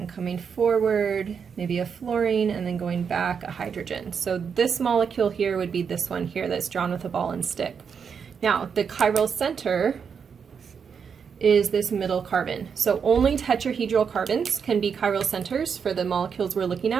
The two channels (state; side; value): quieter; left; 6.6 dB